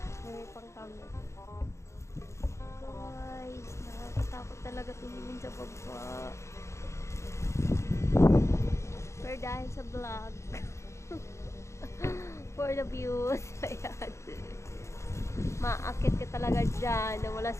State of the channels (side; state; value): right; late; 0.14 ms